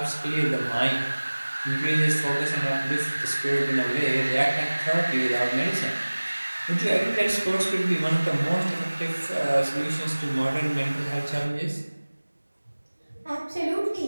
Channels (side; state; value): both; inverted; correlation -1.00